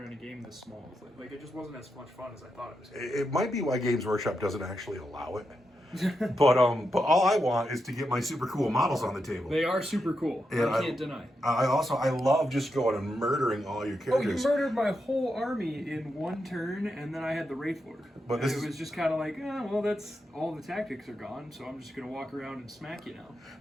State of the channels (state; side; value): normal; both; correlation 0.85